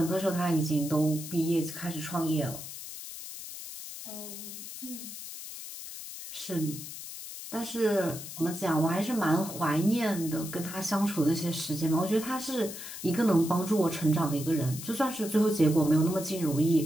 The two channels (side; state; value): left; noise; hiss, 10 dB below the sound